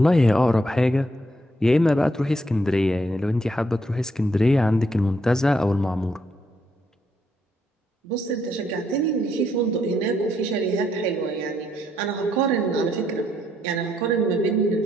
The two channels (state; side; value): normal; both; correlation 0.75